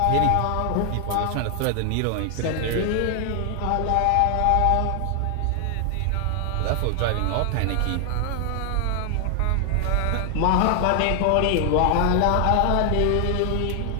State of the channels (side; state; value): both; different; correlation 0.00